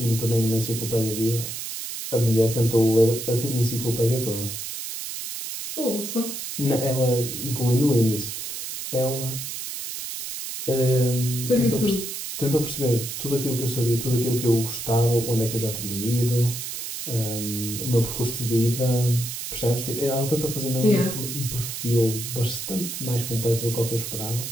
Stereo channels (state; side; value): noise; right; hiss, 6 dB below the sound